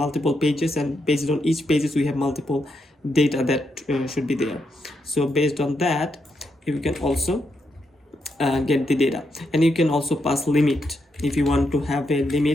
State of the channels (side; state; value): both; normal; correlation 0.81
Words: pages, and based on each pages we have multiple data that should be there. So based on that, you can also get the data, and you can also pass limit. If you want to have a